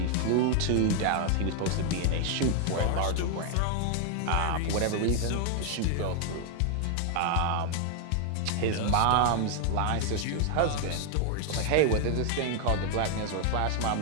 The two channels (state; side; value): different; both; correlation 0.01